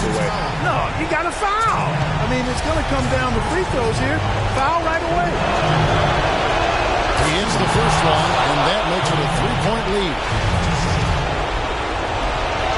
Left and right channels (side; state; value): both; identical; correlation 1.00